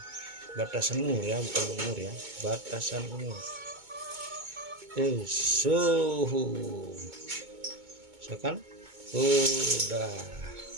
batasan umur ya, bukan umur ya, batasan umur. Suhu. Misalkan udah.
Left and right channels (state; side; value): late; left; 2.2 ms